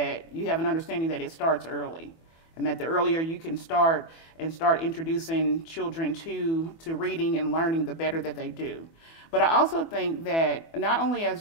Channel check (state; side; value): late; right; 24 ms